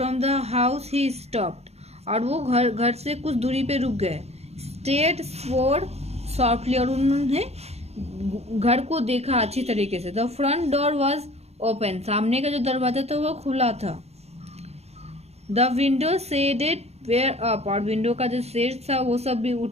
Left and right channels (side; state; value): left; late; 0.31 ms